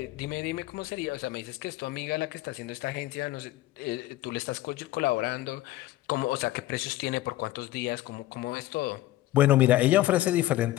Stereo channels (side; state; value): right; quieter; 15.7 dB